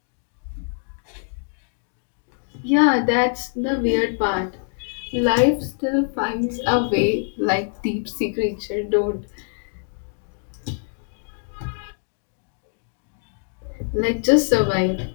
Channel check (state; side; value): silent; right; 63 dB below the other